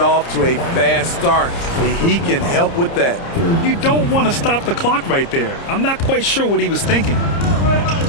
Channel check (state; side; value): late; right; 30 ms